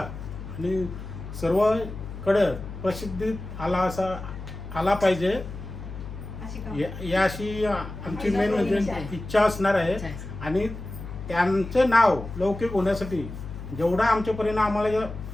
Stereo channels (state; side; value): noise; left; hum, 10 dB below the sound